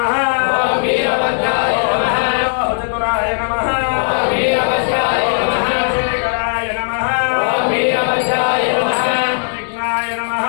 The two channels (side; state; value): right; silent; 69 dB below the other